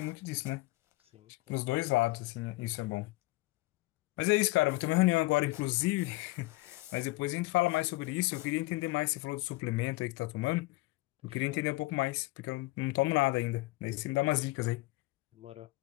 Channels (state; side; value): quieter; right; 21.2 dB